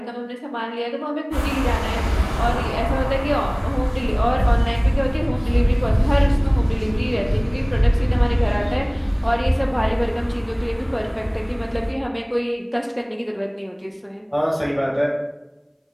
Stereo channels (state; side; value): identical; both; correlation 1.00